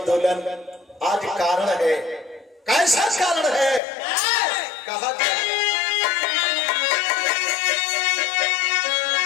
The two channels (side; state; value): right; drops out; at 3.8 s